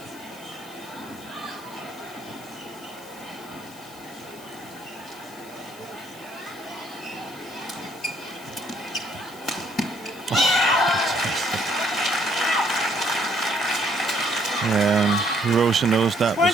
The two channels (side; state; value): left; noise; hiss, 20 dB below the sound